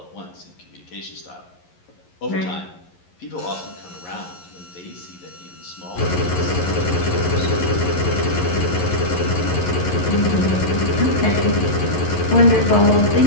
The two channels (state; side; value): late; right; 11 ms